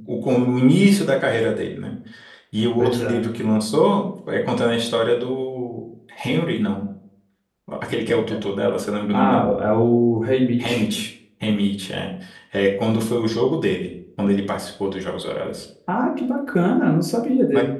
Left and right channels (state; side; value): identical; both; correlation 1.00